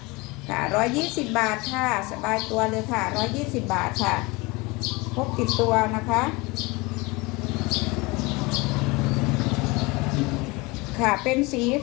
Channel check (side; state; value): right; quieter; 24.6 dB